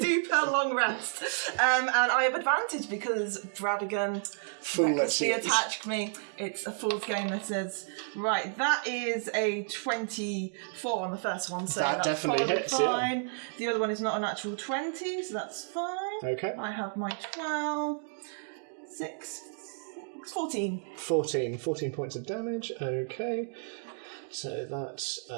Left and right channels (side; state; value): left; silent; digital silence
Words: do per long rest. And I have advantage because Bradigan recklessly attacked me. It's a fool's game, this is. Right, that is a 24 on the first one, so That that's definitely probably hits, fine. The other one is not a natural 20, so that's fine. Okay. I have my 12, 6, 14. 14 points of damage. Okay, so that's